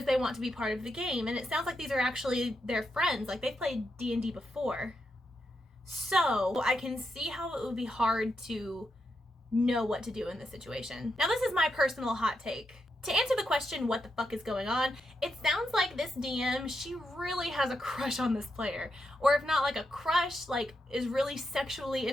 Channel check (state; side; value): normal; both; correlation 0.84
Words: they want to be part of the game. And it sounds like these are actually their friends, like they've played D&D before. So I can see how it would be hard to know what to do in this situation. Now, this is my personal hot take. To answer the question, what the fuck is going on, it sounds like this DM, she really has a crush on this player. Or if not like a crush, like is really sexually